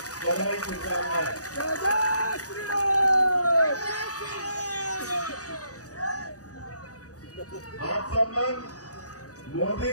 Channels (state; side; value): late; right; 0.67 ms